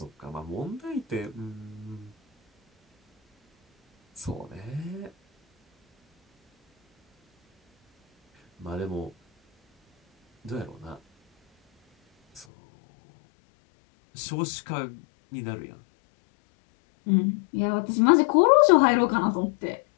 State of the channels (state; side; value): drops out; right; at 12.5 s